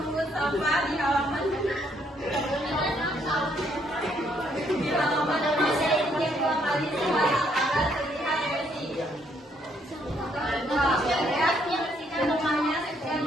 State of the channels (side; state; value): both; normal; correlation 0.70